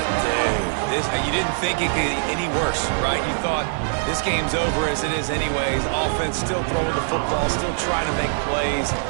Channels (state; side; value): silent; left; 56 dB below the other